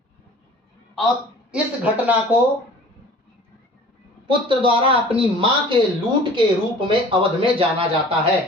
और इस घटना को पुत्र द्वारा अपनी मां के लूट के रूप में अवध में जाना जाता है,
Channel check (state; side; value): normal; both; correlation 0.46